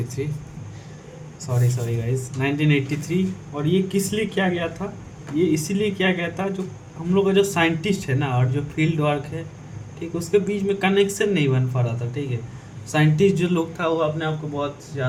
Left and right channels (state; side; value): identical; both; correlation 1.00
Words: सॉरी गाइस 1983। और ये किस लिए किया गया था? ये इसीलिए किया गया था जो हम लोग का जो साइंटिस्ट है ना और जो फील्ड वर्क है, ठीक, उसके बीच में कनेक्शन नहीं बन पा रहा था। ठीक है, साइंटिस्ट जो लोग था वो अपने आप को बहुत